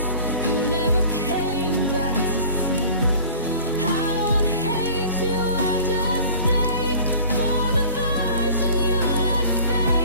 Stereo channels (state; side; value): inverted; both; correlation -0.45